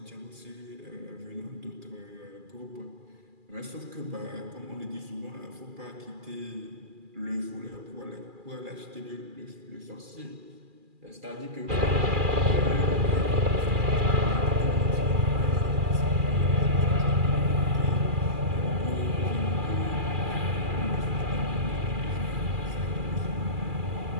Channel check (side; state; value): left; late; 2.4 ms